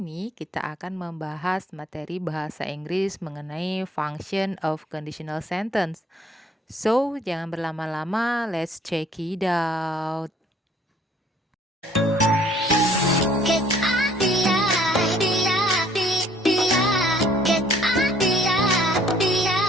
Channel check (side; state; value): both; normal; correlation 0.59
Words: kita akan membahas materi bahasa Inggris mengenai function of conditional sentence. So, jangan berlama-lama, let's check it out.